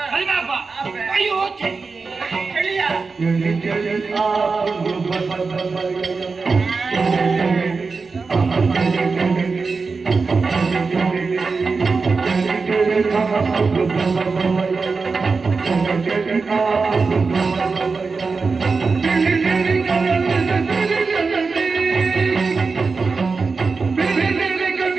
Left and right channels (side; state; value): left; quieter; 4.5 dB